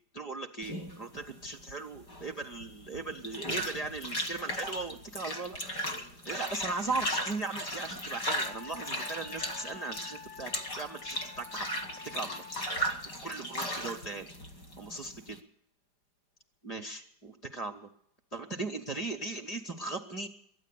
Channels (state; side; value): late; right; 5.0 ms